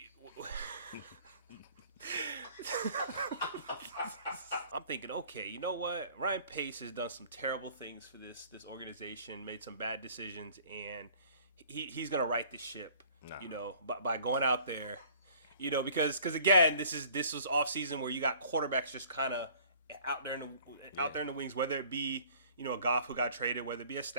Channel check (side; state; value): both; inverted; correlation -0.53